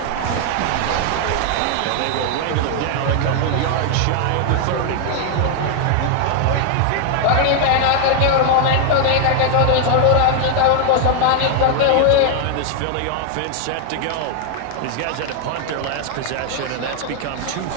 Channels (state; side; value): different; both; correlation 0.00